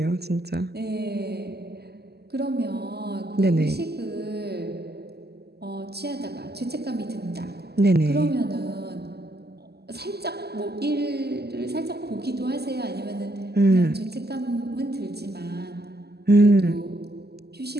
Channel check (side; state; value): left; late; 0.47 ms